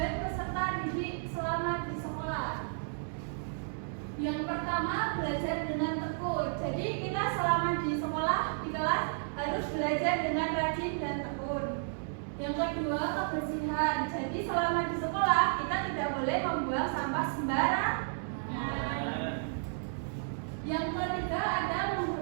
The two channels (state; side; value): silent; left; digital silence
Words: peserta didik selama di sekolah. Yang pertama, belajar dengan tekun. Jadi kita selama di sekolah, di kelas harus belajar dengan rajin dan tekun. Yang kedua, kebersihan. Jadi selama di sekolah kita tidak boleh membuang sampah sembarangan. Yang ketiga ada